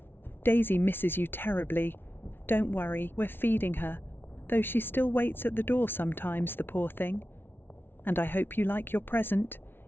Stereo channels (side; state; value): right; late; 0.11 ms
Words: Daisy misses you terribly. Don't worry, we're feeding her, though she still waits at the door sometimes, the poor thing. And I hope you like your present.